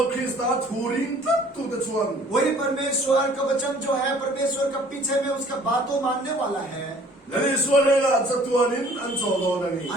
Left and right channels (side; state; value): both; normal; correlation 0.54